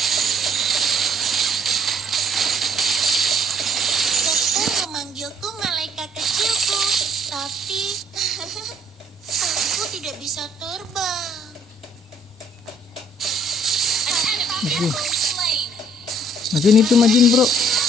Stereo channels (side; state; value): both; normal; correlation 0.62